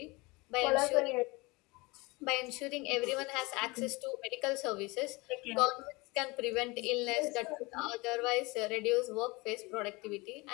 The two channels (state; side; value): quieter; right; 24.7 dB